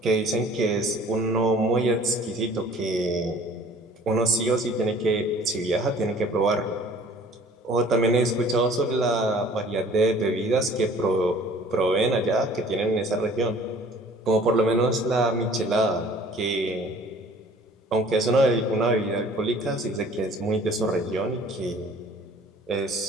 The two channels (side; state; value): both; normal; correlation 0.51